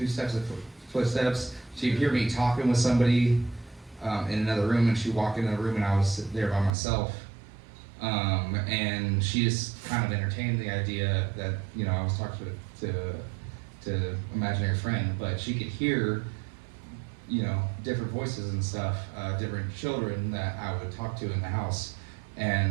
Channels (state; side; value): drops out; left; at 6.7 s